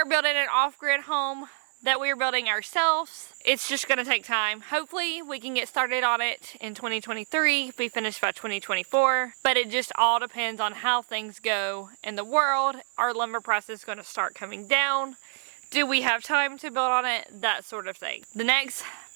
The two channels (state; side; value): silent; left; 60 dB below the other